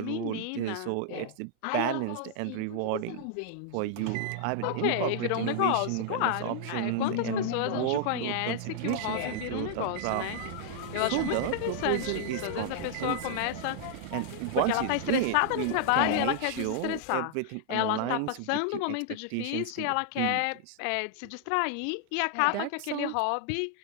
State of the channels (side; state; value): both; different; correlation -0.01